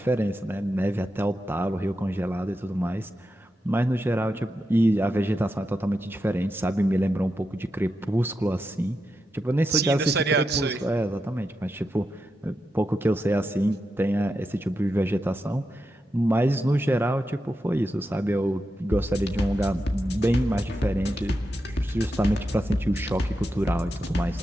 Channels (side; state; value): both; normal; correlation 0.88